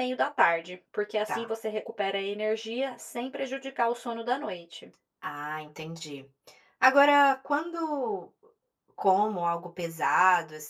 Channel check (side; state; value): both; identical; correlation 1.00